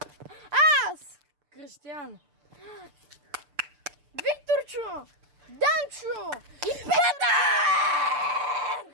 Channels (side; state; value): left; late; 6.8 ms